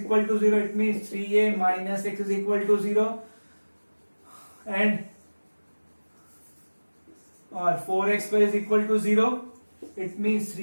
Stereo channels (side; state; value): both; inverted; correlation -1.00